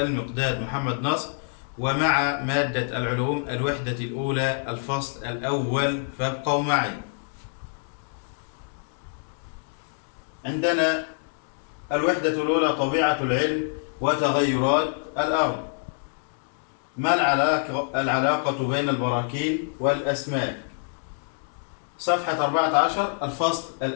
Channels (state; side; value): silent; right; digital silence